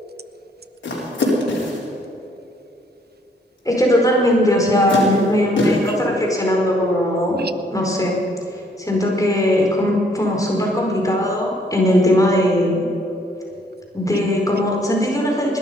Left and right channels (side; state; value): both; normal; correlation 0.65